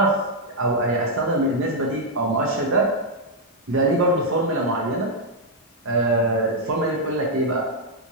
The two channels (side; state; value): both; normal; correlation -0.04